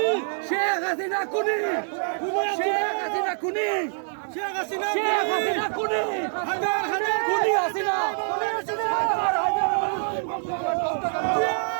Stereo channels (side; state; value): left; silent; digital silence